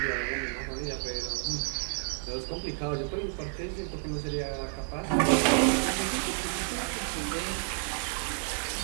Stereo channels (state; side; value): silent; left; 57 dB below the other